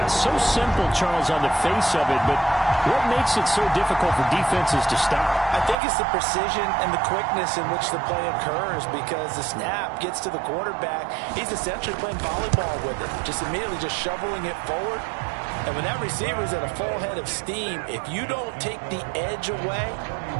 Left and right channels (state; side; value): drops out; left; at 5.8 s